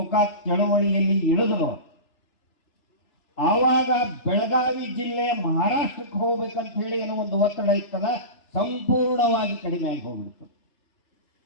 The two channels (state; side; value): late; right; 3.3 ms